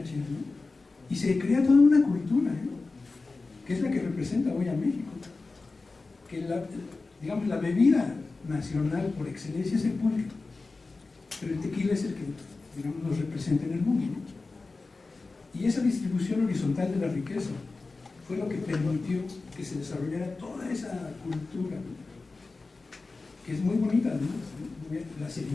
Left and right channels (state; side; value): quieter; right; 3.7 dB